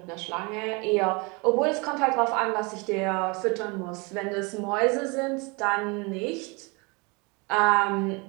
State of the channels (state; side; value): quieter; left; 29.0 dB